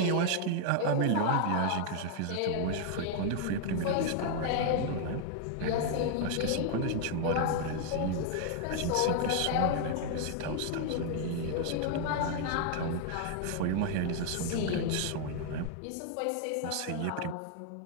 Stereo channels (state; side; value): different; both; correlation 0.00